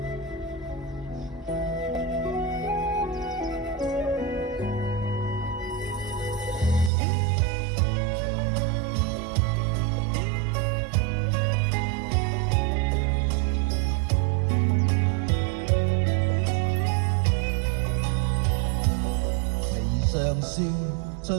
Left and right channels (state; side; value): drops out; left; at 6.9 s